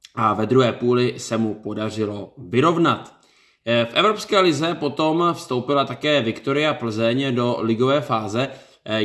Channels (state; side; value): identical; both; correlation 1.00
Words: a ve druhé půli se mu podařilo vyrovnat. V Evropské lize potom vstoupila také Viktoria Plzeň do ligové fáze.